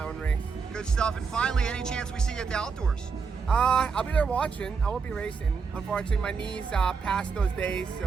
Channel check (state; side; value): quieter; left; 5.4 dB